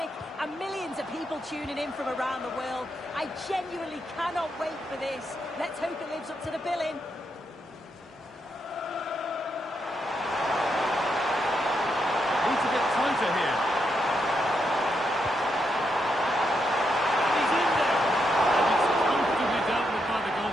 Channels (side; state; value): both; normal; correlation 0.81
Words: and millions of people tuning in from around the world. I genuinely cannot wait for this. Let's hope it lives up to the billing. Need to get tighter here. He's in there. And it's comfortably dealt with by the